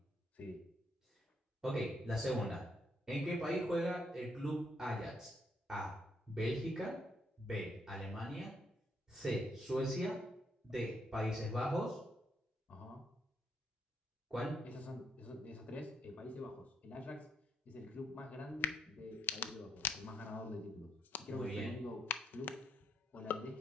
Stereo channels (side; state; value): both; normal; correlation 0.74